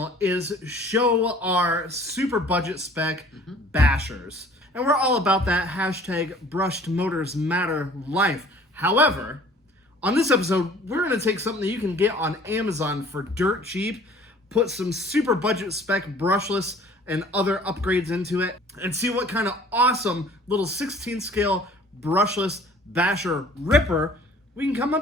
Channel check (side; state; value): both; normal; correlation 0.52